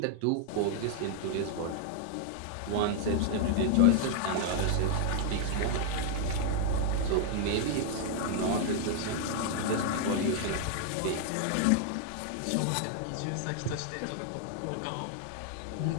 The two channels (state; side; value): different; both; correlation 0.00